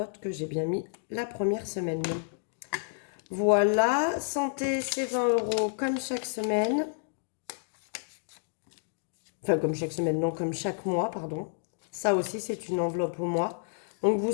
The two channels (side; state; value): right; silent; digital silence